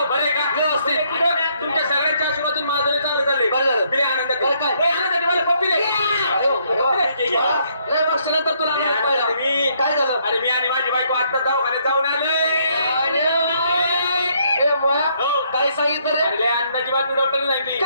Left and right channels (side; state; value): both; inverted; correlation -0.70